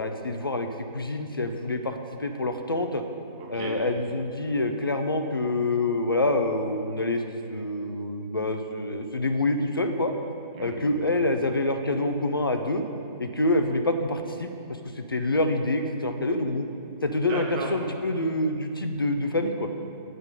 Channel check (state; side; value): inverted; both; correlation -0.54